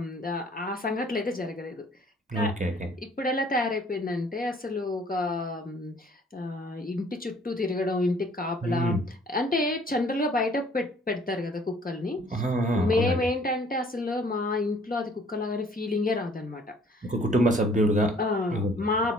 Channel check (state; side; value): normal; both; correlation 0.57